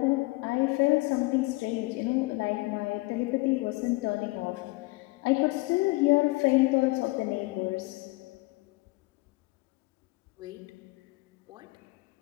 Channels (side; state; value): right; quieter; 23.3 dB